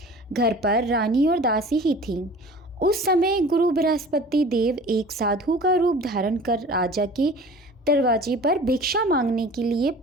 घर पर रानी और दासी ही थीं। उस समय गुरु बृहस्पति देव एक साधु का रूप धारण कर राजा के दरवाजे पर भिक्षा मांगने के लिए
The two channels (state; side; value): normal; both; correlation 0.43